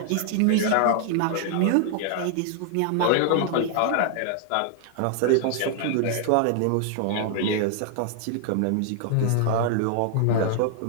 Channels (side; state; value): both; different; correlation 0.00